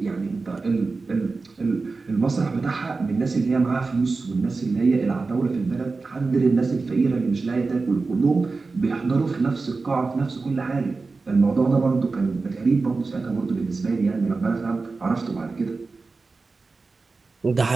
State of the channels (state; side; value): quieter; left; 4.0 dB